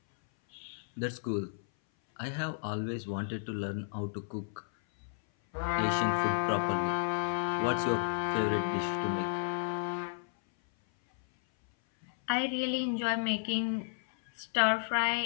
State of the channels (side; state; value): right; silent; 56 dB below the other